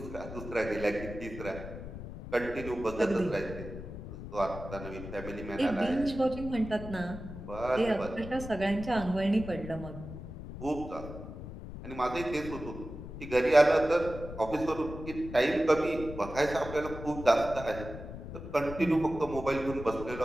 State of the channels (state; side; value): noise; left; rumble, 10 dB below the sound